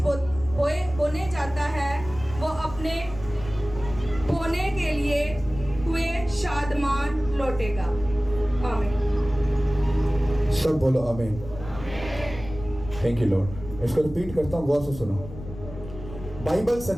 बोने जाता है वो अपने बोने के लिए हुए शादमान लौटेगा। आमीन। सब बोलो आमीन। Thank you Lord. इसको रिपीट करता हूँ, गौर से सुनो। बाइबल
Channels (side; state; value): left; noise; rumble, 13 dB below the sound